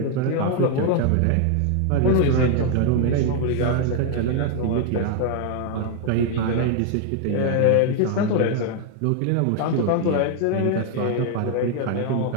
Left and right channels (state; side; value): different; both; correlation 0.00